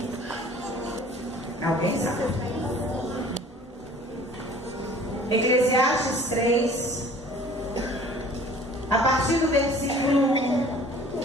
Alguém sabe? Eclesiastes 3, a partir do versículo 1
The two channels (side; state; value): both; normal; correlation 0.49